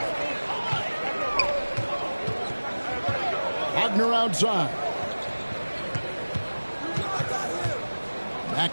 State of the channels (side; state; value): both; inverted; correlation -1.00